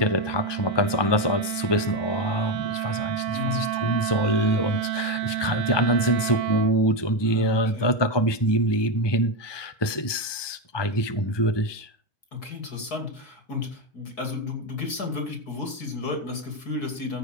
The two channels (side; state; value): right; late; 1.2 ms